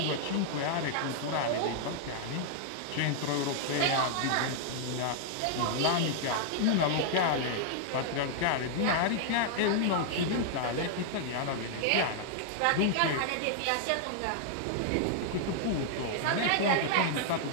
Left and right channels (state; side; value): different; both; correlation -0.01